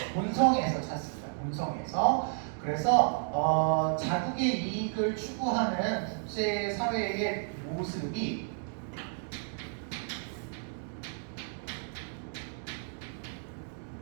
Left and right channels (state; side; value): silent; left; 56 dB below the other